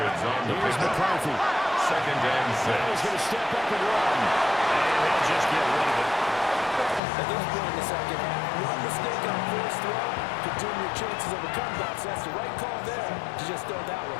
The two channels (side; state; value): right; drops out; at 7.0 s